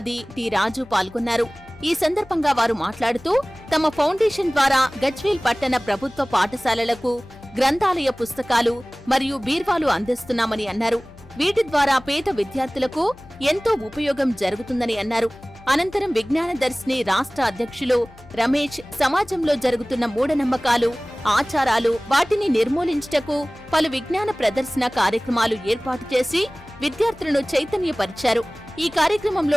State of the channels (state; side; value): noise; left; hum, 23 dB below the sound